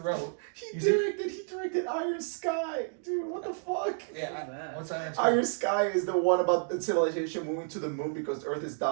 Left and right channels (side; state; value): left; silent; digital silence